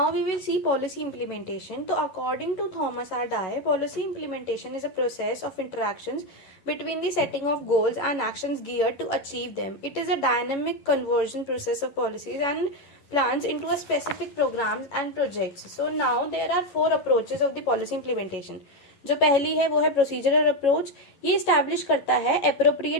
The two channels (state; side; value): late; right; 11 ms